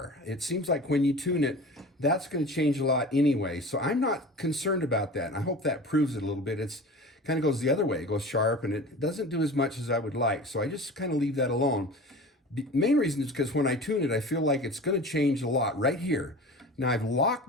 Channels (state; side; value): normal; both; correlation 0.37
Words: It seems like when you tune it, that's going to change a lot anyway. So I'm not concerned about that. And I hope that proves it a little bit. It's kind of goes the other way. It goes sharp and it doesn't do as much as I would like. So I just kind of leave that alone. The main reason is because when I tune it, I feel like it's going to change a lot right here. Now I've